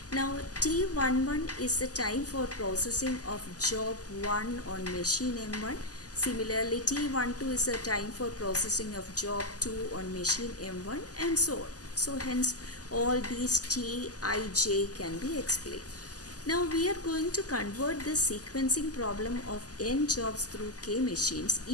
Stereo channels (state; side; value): late; right; 0.67 ms